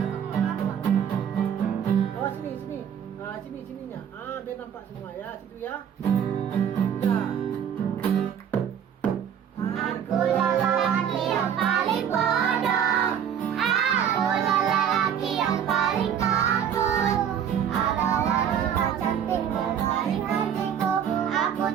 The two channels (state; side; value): quieter; left; 8.7 dB